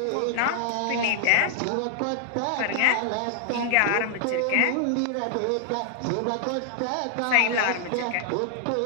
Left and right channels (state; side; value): different; both; correlation 0.00